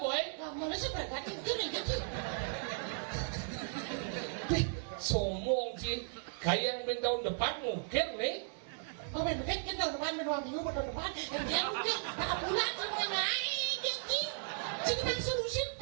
boy gambar seberapa itu nih gitu sombong sih kayak yang tahun depan mungkin nih mungkin kita tahun depan 2 minggu tahun depan dan dia mungkin tak bulan sama naik jadi jadi bang solusi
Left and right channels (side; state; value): left; silent; 54 dB below the other